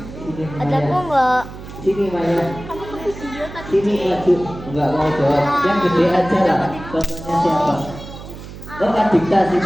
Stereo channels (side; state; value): right; noise; hum, 13 dB below the sound